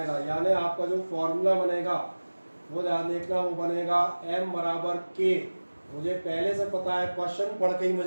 यानी आपका जो फॉर्मूला बनेगा वो ध्यान देखना, वो बनेगा m बराबर k। मुझे पहले से पता है, क्वेश्चन पढ़ के ही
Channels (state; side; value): inverted; both; correlation -1.00